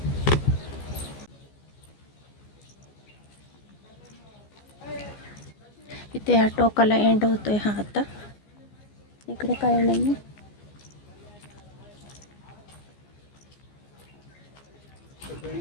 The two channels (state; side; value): late; right; 14 ms